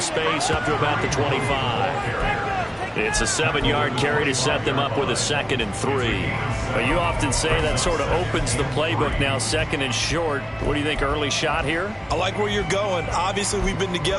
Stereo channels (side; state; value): both; identical; correlation 1.00